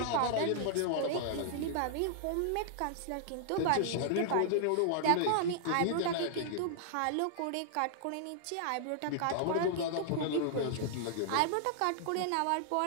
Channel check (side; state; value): both; different; correlation -0.01